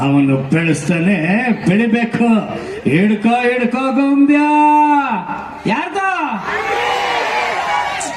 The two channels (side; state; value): both; identical; correlation 1.00